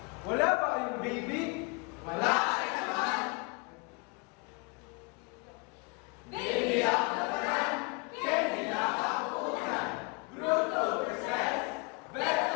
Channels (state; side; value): quieter; right; 31.5 dB